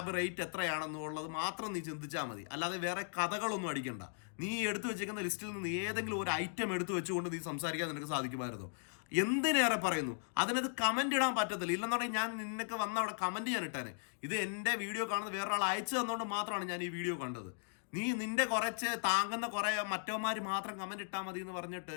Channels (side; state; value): right; silent; digital silence